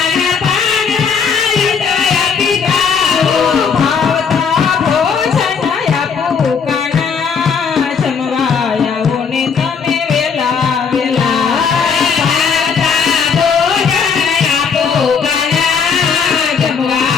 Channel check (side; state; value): right; quieter; 6.1 dB